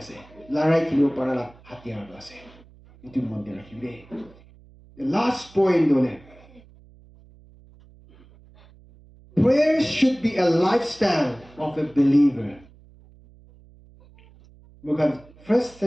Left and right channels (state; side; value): noise; right; hum, 25 dB below the sound